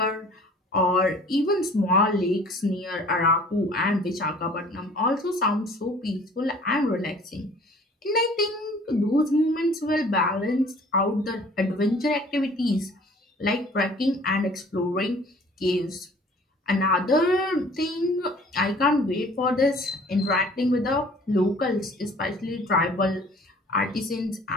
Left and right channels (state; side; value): normal; both; correlation 0.51